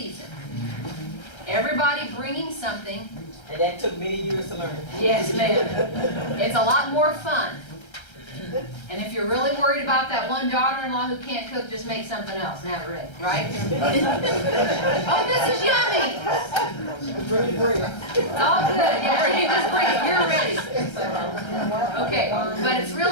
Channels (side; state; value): right; late; 1.3 ms